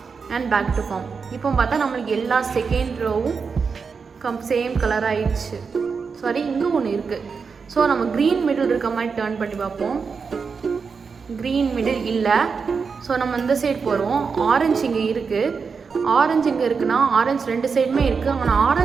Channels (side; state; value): left; quieter; 5.4 dB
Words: and back to form. இப்போ பார்த்தா நம்மளுக்கு எல்லா செகண்ட் ரோவும் சேம் கலர் ஆயிடுச்சு. சாரி, இங்கே ஒன்று இருக்குது. ஸோ நம்ம க்ரீன் மிடில் இருக்க மாதிரி டர்ன் பண்ணி பார்ப்போம். க்ரீன் மிடில் இல்லை. ஸோ நம்ம இந்த சைடு போகிறோம். ஆரஞ்சு இங்கே இருக்குது. ஆரஞ்சு இங்கே இருக்குன்னா ஆரஞ்சு 2 சைடுமே இருக்குது. ஆனால்